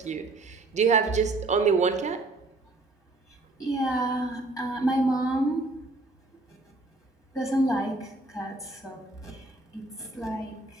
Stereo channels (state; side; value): quieter; left; 3.1 dB